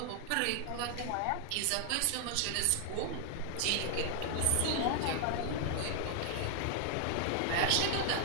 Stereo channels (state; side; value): different; both; correlation 0.00